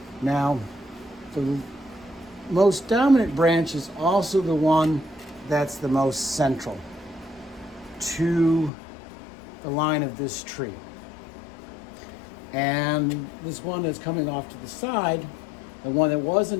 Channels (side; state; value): right; drops out; at 8.7 s